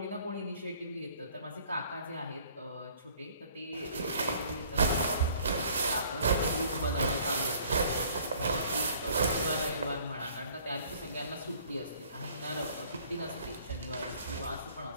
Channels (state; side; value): inverted; both; correlation -0.57